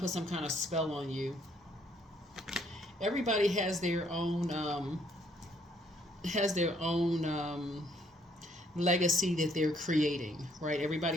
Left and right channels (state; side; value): normal; both; correlation 0.67